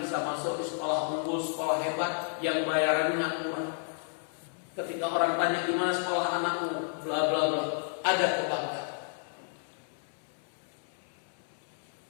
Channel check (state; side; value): silent; right; 57 dB below the other